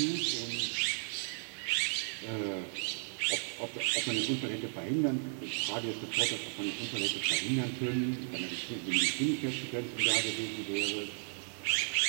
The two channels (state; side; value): silent; left; digital silence